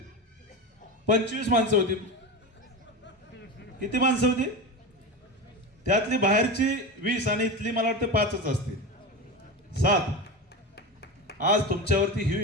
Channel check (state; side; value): normal; both; correlation 0.23